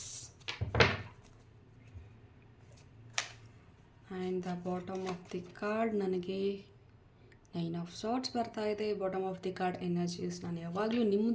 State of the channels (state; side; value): identical; both; correlation 1.00